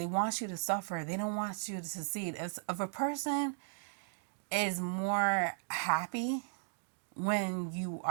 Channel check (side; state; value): left; silent; digital silence